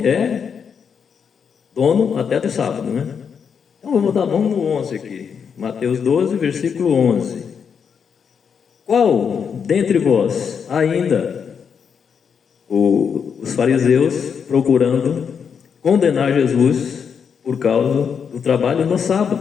é dono até do sábado, né? Então, vamos dar mão no 11 aqui. Mateus 12, versículo 11. Qual dentre vós ainda os fariseus procurando condenar Jesus por causa do trabalho no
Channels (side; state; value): right; quieter; 6.8 dB